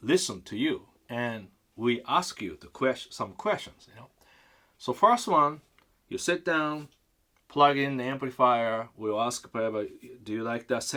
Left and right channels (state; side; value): identical; both; correlation 1.00